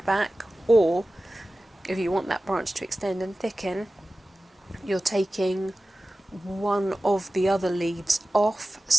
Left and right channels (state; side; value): normal; both; correlation 0.96